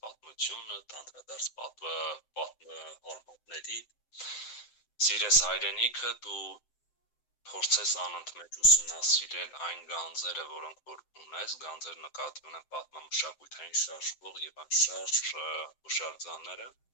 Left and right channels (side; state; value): right; late; 7.7 ms